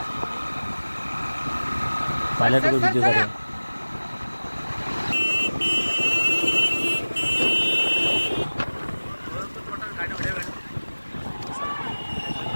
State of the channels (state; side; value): inverted; both; correlation -1.00